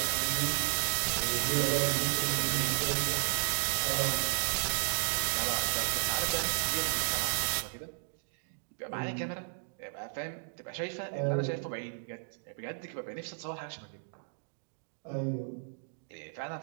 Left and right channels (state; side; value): silent; left; digital silence